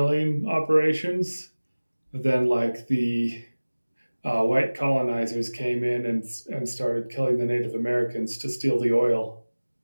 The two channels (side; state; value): both; inverted; correlation -1.00